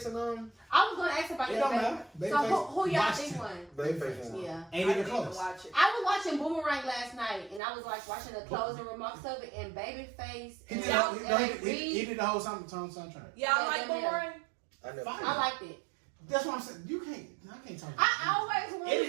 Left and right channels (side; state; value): left; drops out; at 7.6 s